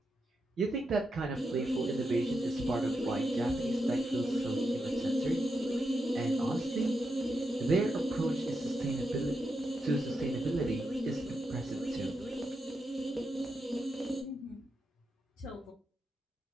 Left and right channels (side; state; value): both; normal; correlation 0.86